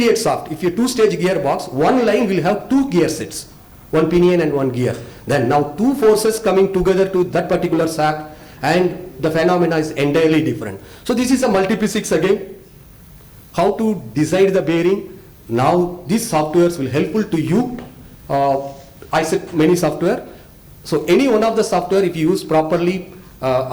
shaft, if you two-stage gearbox, one line will have two gear sets, one pinion and one gear. Then now two forces coming together to that particular shaft, and the phenomena is entirely different. So this is a multiphysics again. How to decide the bearing. Now these softwares will helpful to you. I said many software. So any one of the software, if you use properly,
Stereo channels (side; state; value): both; identical; correlation 1.00